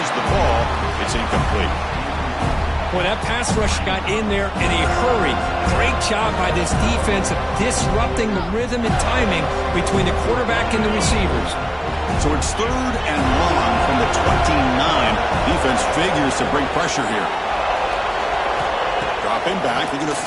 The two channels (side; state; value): both; identical; correlation 1.00